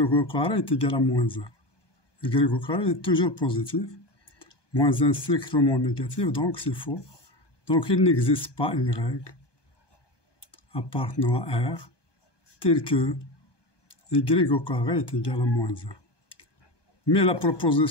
carré est égal à moins 1. Y au carré est toujours positif, moins 1 strictement négatif, donc c'est faux. Donc il n'existe pas Y appartenant à R tel que Y au carré est égal à moins 1. Mais la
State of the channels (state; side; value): late; right; 1.2 ms